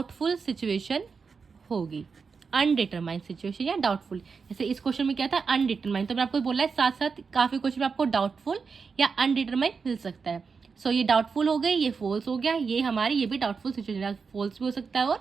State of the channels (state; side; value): quieter; left; 5.3 dB